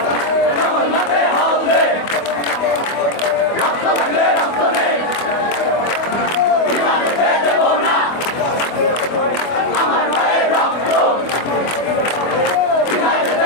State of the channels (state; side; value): late; right; 24 ms